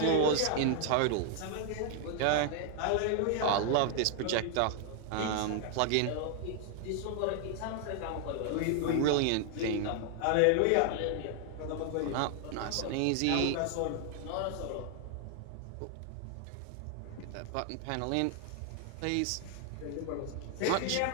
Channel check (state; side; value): different; both; correlation 0.00